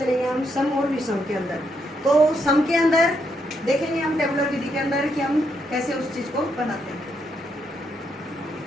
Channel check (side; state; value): both; normal; correlation 0.78